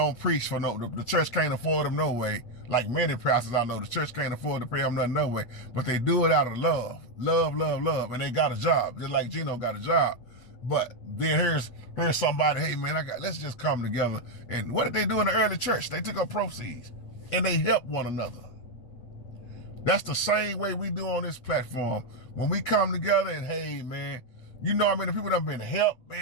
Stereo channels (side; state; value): right; late; 8.3 ms